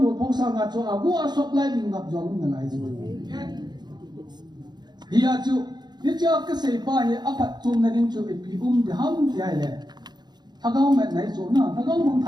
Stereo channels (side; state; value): left; late; 0.21 ms